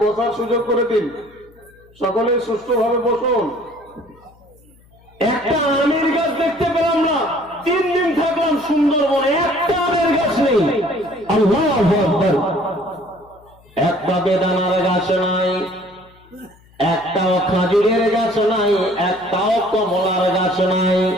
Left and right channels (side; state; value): left; noise; hum, 29 dB below the sound